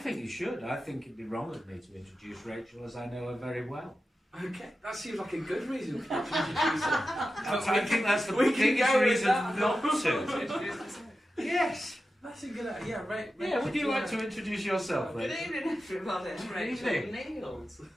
you should. I think it'd be wrong of me to introduce Rachel, as I know her very well. Okay, that seems like a good reason for you to introduce her. I think that's the biggest reason not to. Yes. That's a good idea. Yeah, right. Yeah, would you like to introduce yourself, Good Rachel? evening, everybody. Rachel evening. Neal.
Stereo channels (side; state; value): both; normal; correlation 0.92